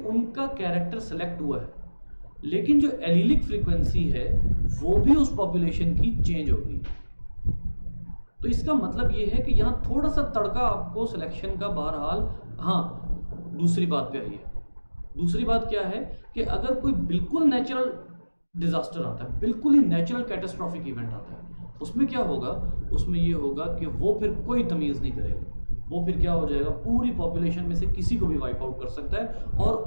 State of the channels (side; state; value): both; inverted; correlation -1.00